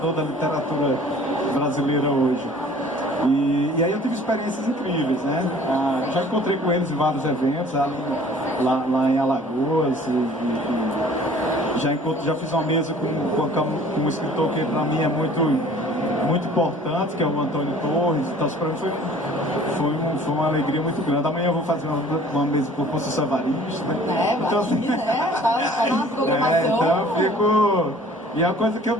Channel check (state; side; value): normal; both; correlation 0.50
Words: da literatura brasileira hoje. E aí eu tive experiências incríveis, né? Já encontrei com eles em vários eventos, lá em Alagoas, já fiz uma mesa com um escritor que para mim é muito importante, que é o Antônio Torres. Então para mim foi uma alegria muito grande. Amanhã eu vou fazer uma mesa com o Conceição Evaristo, né? Então, assim, tá na programação. Então eu fico... E é uma coisa que eu